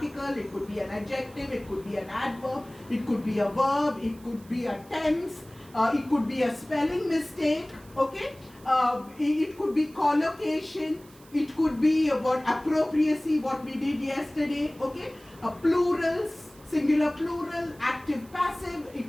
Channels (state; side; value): noise; right; hiss, 25 dB below the sound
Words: it could be an adjective, it could be an adverb, it could be a verb, it could be a tense, it could be a spelling mistake. Okay, it could be collocation, it could be about appropriacy, what we did yesterday. Okay, plurals, singular, plural, active, passive, it